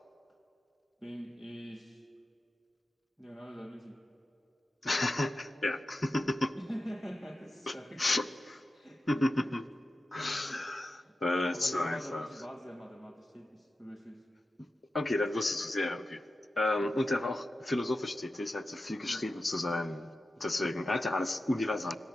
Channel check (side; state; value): both; normal; correlation 0.93